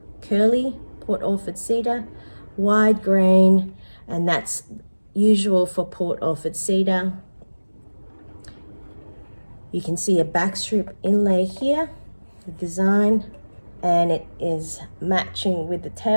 Curly Port Orford cedar, wide grain, and that's usual for Port Orford cedar. You can see a backstrip inlay here, the design, and it is matching with the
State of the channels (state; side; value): inverted; both; correlation -1.00